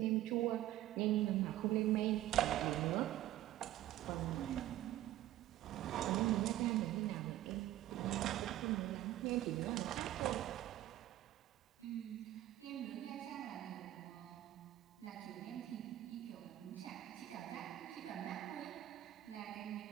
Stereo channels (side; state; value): left; quieter; 14.1 dB